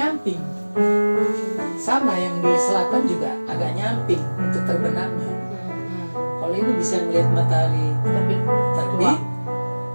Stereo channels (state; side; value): inverted; both; correlation -1.00